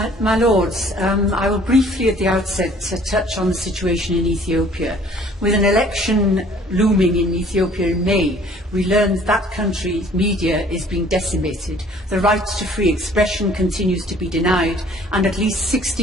My Lords, I will briefly at the outset touch on the situation in Ethiopia. With an election looming in Ethiopia in May, we learned that country's media is being decimated, the right to free expression continues to be denied, and at least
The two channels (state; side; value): normal; both; correlation 0.55